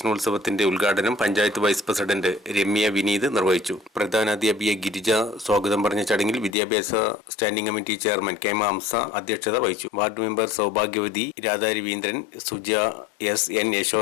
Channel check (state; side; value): drops out; right; at 6.6 s